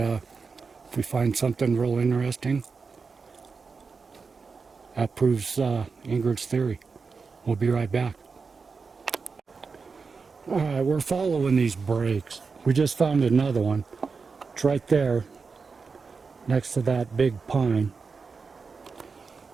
we find something real interesting, that proves Ingrid's theory. We'll be right back. Alright, we're following these breaks. We just found another one. It's right there, next to that big pine.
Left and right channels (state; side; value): quieter; left; 4.8 dB